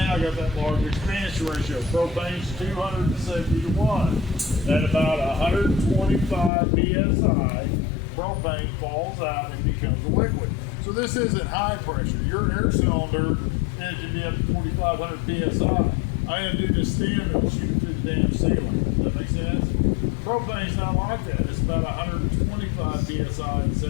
I got that large expansion ratio. Propane's 270 to 1. At about 125 psi, propane falls out and becomes a liquid. So this isn't high pressure. Your air cylinder, and it can be up to 4,500 psi. I undo the stem and it'll shoot it through the damn ceiling. Does that make sense? Propane's not like that. It's about 125 psi and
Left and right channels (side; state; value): right; drops out; at 6.5 s